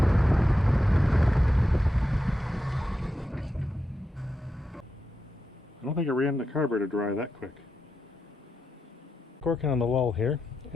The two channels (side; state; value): both; normal; correlation 0.87